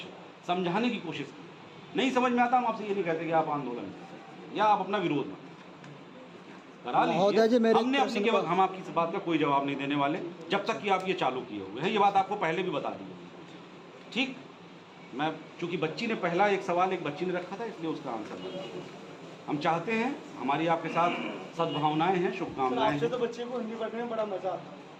समझाने की कोशिश की, नहीं समझ में आता हम आपसे ये नहीं कहते कि आप आंदोलन या आप अपना विरोध करा लीजिए। हमने अपनी के हम आपकी इस बात का कोई जवाब नहीं देने वाले जब तक कि आप ये चालू किए हुए हैं। ये बात आपको पहले भी बता दी है, ठीक। मैं चूंकि बच्ची ने पहला एक सवाल एक बच्ची ने रखा था, इसलिए उसका आंसर बता दिया। हम चाहते हैं, हमारी आपके साथ सद्भावनाएं हैं, शुभकामनाएं हैं। तो बच्चे को हिंदी पढ़ने में बड़ा मजा आता है।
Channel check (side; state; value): both; identical; correlation 1.00